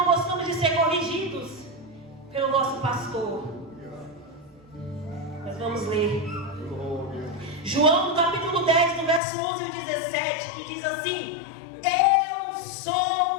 gostamos de ser corrigidos pelo nosso pastor. Mas vamos ler João, no capítulo 10, no verso 11 e 17, que diz assim: eu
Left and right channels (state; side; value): drops out; right; at 9.2 s